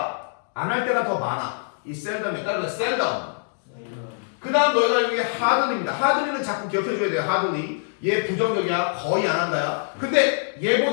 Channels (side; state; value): right; silent; digital silence